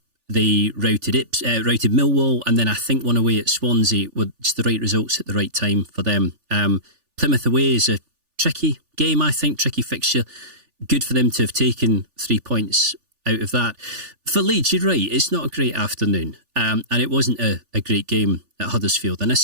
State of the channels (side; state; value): left; late; 3.4 ms